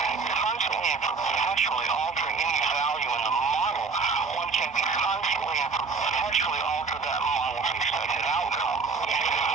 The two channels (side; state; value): left; quieter; 4.6 dB